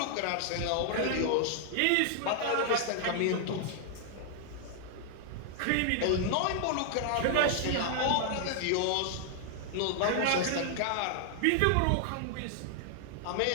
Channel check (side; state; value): both; different; correlation 0.00